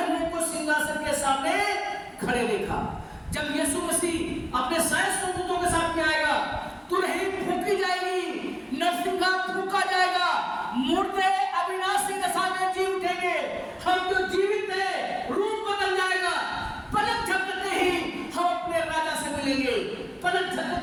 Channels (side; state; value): both; identical; correlation 1.00